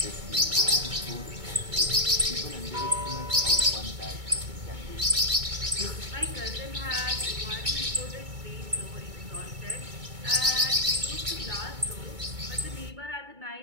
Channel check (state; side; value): late; left; 2.2 ms